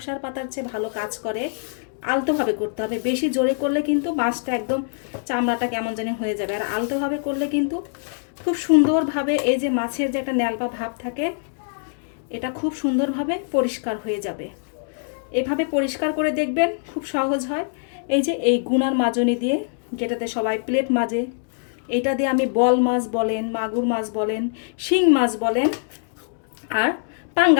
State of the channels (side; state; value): right; silent; digital silence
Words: পাতার চেয়ে ভালো কাজ করে। আলতোভাবে করতে হবে, বেশি জোরে করলে কিন্তু মাছটা একদম চামড়াটা কেমন জানি হয়ে যাবে, আর আলতোভাবে করলে কিন্তু খুব সুন্দরভাবে এই যে মাছের যে একটা ন্যালপা ভাব থাকে এটা খুব সুন্দরভাবে পরিষ্কার হয়ে যাবে। এভাবে পরিষ্কার করে দেখবেন, খুব সহজ হয়। এই যে এই গুনার মাজনি দিয়ে, যেটাতে সবাই প্লেট মাজে, এইটা দিয়ে আমি বল মাছ বলেন, মাগুর মাছ বলেন, শিং মাছ বলেন, আর